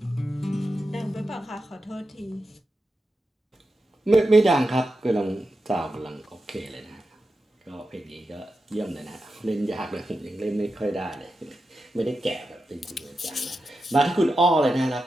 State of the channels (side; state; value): both; normal; correlation 0.90